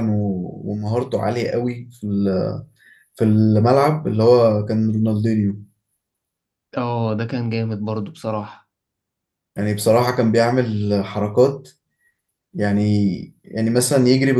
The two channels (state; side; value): identical; both; correlation 1.00